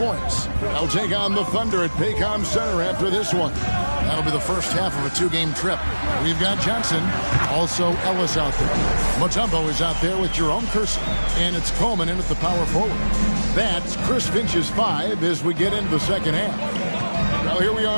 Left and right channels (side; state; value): both; inverted; correlation -1.00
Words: They'll take on the Thunder at Paycom Center after this one. That'll be the first half of a 2-game trip. We've got Johnson, also Ellis out there. Mutombo is out there with Jerome Kersey. And it's Coleman in at the power forward. That's Chris Finch's 5 as we get into the second half. Now here we